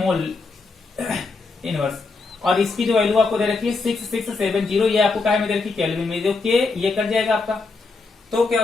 इनवर्स, और इसकी जो वैल्यू आपको दे रखी है 6670, ये आपको क्या में दे रखी है, केल्विन में, जो के ये कट जाएगा आपका। तो क्या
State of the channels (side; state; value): right; quieter; 4.0 dB